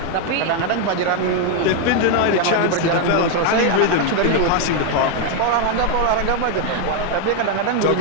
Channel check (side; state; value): both; different; correlation 0.01